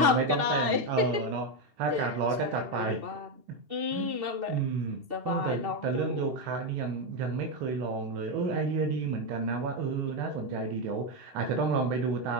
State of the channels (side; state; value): left; late; 2.7 ms